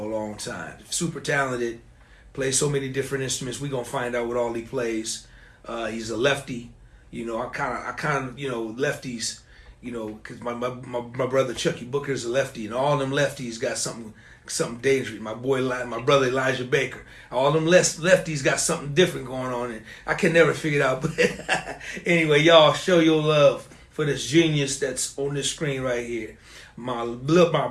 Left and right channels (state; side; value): identical; both; correlation 1.00